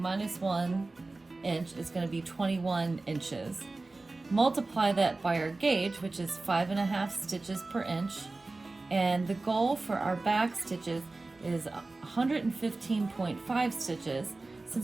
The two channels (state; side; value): quieter; left; 3.3 dB